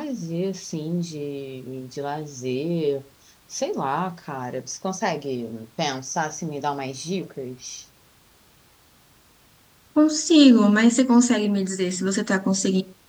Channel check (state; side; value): identical; both; correlation 1.00